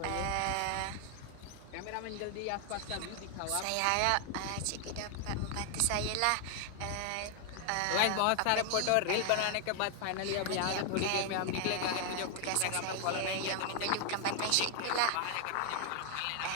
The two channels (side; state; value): both; different; correlation 0.00